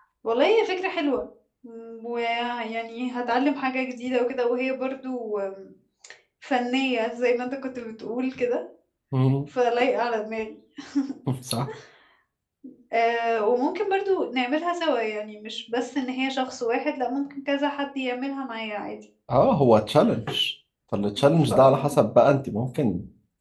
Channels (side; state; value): both; identical; correlation 1.00